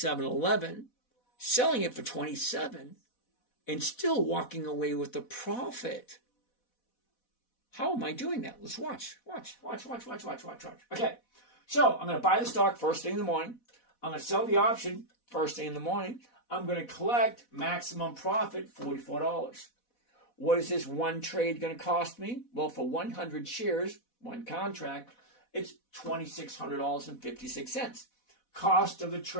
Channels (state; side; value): late; right; 4.1 ms